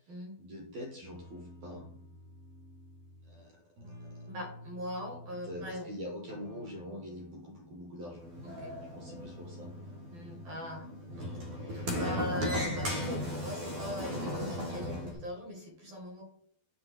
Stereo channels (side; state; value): left; late; 12 ms